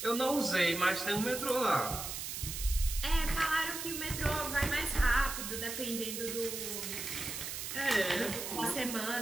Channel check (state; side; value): noise; right; hiss, 5 dB below the sound